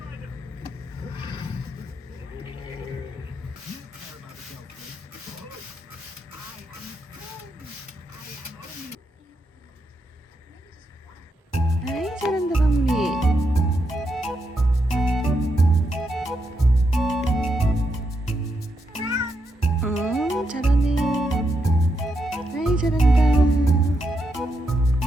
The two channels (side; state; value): both; normal; correlation 0.82